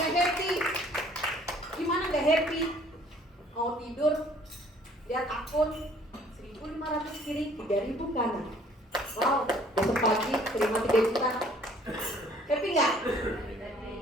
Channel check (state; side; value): normal; both; correlation 0.57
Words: happy? Gimana gak happy? Mau tidur, lihat akun 1.500 kiri, 3.000 kanan. Wow, besok pagi terima 3 juta. Happy nggak?